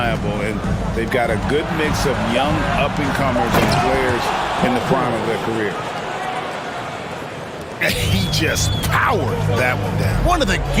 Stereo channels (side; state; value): both; identical; correlation 1.00